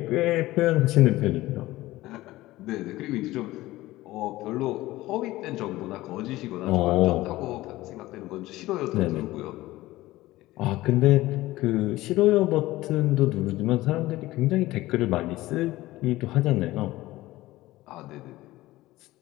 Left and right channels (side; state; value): right; quieter; 17.5 dB